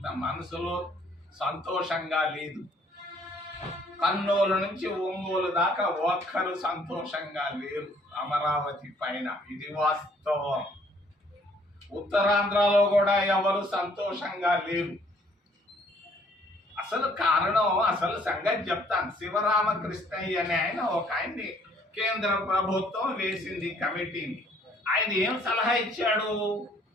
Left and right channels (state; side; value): normal; both; correlation 0.62